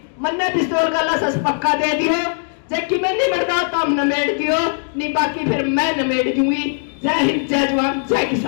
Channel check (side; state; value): right; silent; digital silence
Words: मन्ने पिस्तौल का लसस पक्का दे दियो, जबकि मैं नहीं मरता तो हम नमेड़ दियो, नहीं बाकी फिर मैं नमेड़ दूंगी। जय हिंद, जय जवान, जय